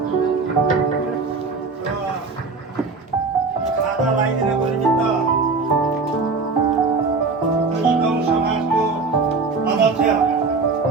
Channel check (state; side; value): quieter; left; 4.2 dB